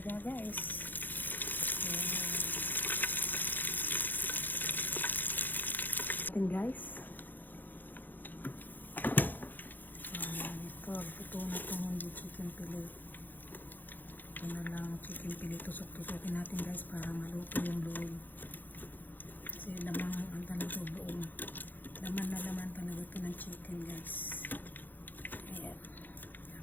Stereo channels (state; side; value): late; right; 0.087 ms